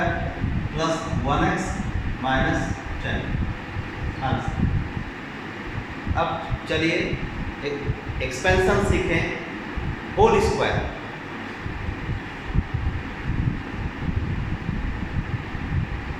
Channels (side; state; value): both; identical; correlation 1.00